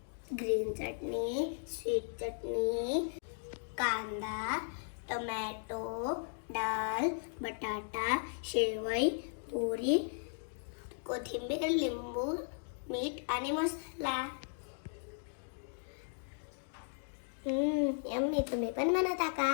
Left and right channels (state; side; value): silent; right; digital silence